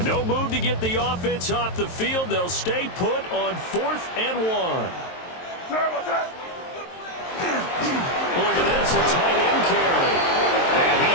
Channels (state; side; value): late; right; 23 ms